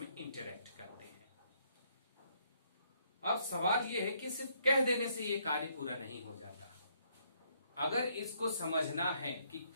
इंटरेक्ट करते हैं। अब सवाल यह है कि सिर्फ कह देने से ये कार्य पूरा नहीं हो जाता। अगर इसको समझना है कि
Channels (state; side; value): inverted; both; correlation -0.70